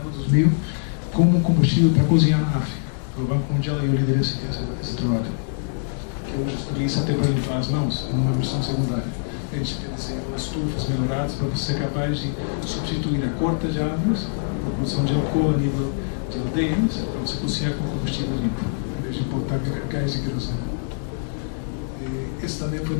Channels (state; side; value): silent; right; digital silence